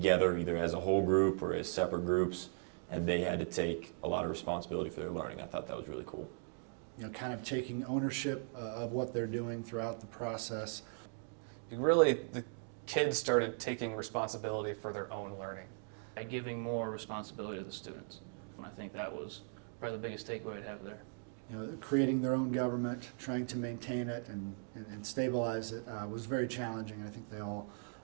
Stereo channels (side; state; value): left; silent; 52 dB below the other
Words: either as a whole group or as separate groups, and they had to take a lot of responsibility for their learning. I thought that was really cool. You know, kind of taking ownership of what they're doing throughout the process. The kids started taking responsibility for their own learning. By giving more responsibility to the students. And I think that was probably the biggest takeaway I'd have there. You know, creating their own government, trying to maintain it and stabilize it was very challenging. I think they all